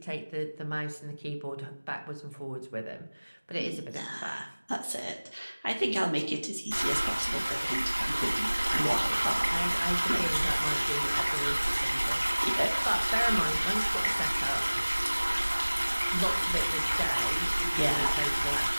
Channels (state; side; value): inverted; both; correlation -1.00